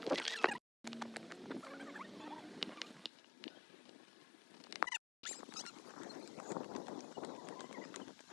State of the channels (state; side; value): drops out; right; at 3.1 s